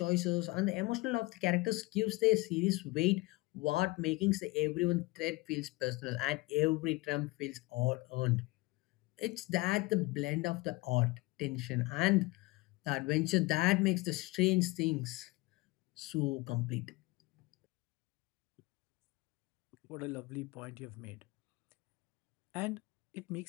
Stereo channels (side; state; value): right; quieter; 22.6 dB